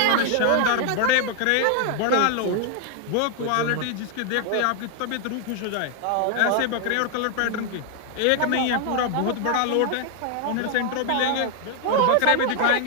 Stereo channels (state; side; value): different; both; correlation 0.00